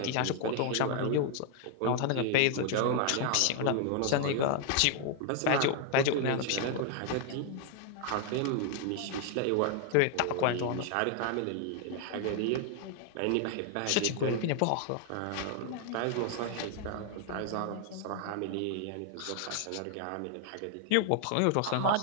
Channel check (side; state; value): both; different; correlation 0.00